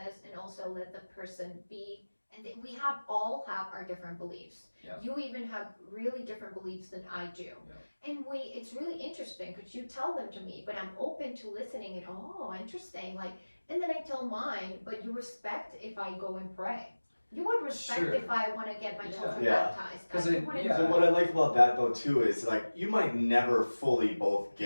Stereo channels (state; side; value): inverted; both; correlation -1.00